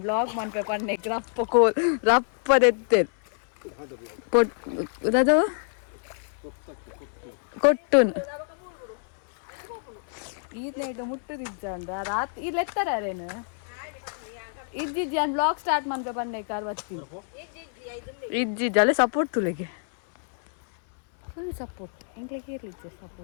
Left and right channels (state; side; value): silent; right; 60 dB below the other